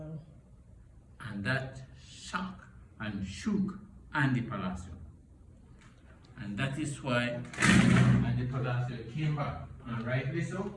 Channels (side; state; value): both; identical; correlation 1.00